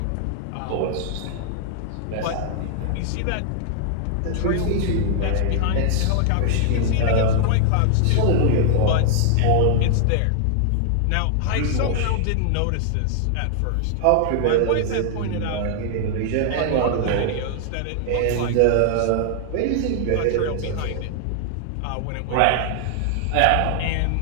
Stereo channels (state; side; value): different; both; correlation 0.00